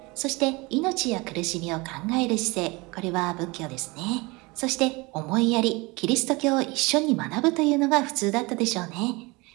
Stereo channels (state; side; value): quieter; left; 24.8 dB